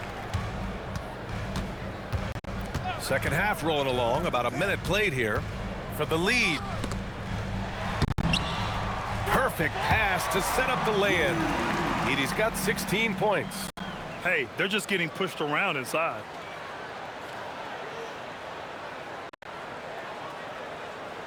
Second half rolling along, about a minute played here for the lead. Perfect pass to set up the lay-in. Edey's got 16 points. Hey, they're just getting pushed around inside.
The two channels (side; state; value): both; identical; correlation 1.00